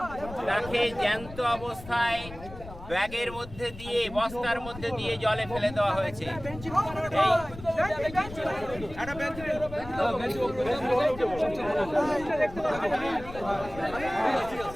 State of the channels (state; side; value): noise; left; rumble, 14 dB below the sound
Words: তাকে জ্যান্ত অবস্থায় ব্যাগের মধ্যে দিয়ে, বস্তার মধ্যে দিয়ে জলে ফেলে দেওয়া হয়েছে।